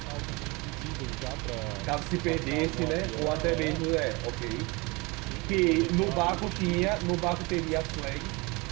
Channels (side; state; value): left; quieter; 26.3 dB